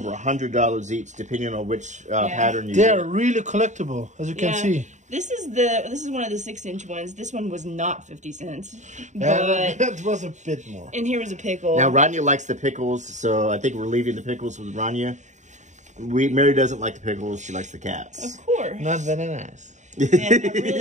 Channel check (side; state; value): left; late; 0.35 ms